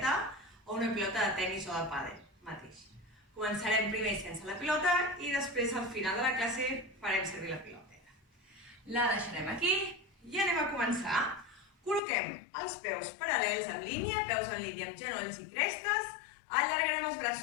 o una pilota de tenis o de pàdel mateix. Començarem primer sense la pilota i després al final de la classe farem servir la piloteta. La deixarem aquí i anem a començar. Col·loquem els peus paral·lels en línia, peus en línia amb genolls i crestes. Allargarem els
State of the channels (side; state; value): right; drops out; at 12.0 s